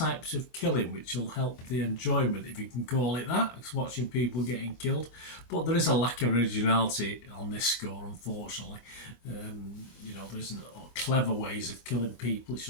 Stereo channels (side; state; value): right; late; 25 ms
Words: of killing, which will help the enjoyment, if you can call it that, watching people getting killed. But there is a lack of originality on this score, unfortunately. There isn't clever ways of killing people. It's